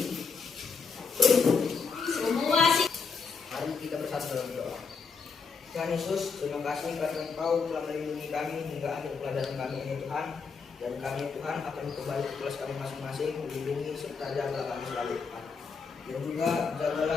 Semua sih. Mari kita bersatu dalam doa. Tuhan Yesus, terima kasih karena Engkau telah melindungi kami hingga akhir pelajaran kami ini Tuhan. Dan kami Tuhan akan kembali ke kelas kami masing-masing, melindungi serta jagalah kami selalu Tuhan. Dan juga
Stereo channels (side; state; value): right; quieter; 5.3 dB